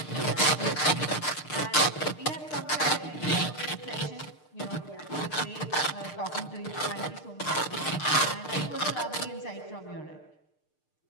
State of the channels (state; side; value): late; right; 6.6 ms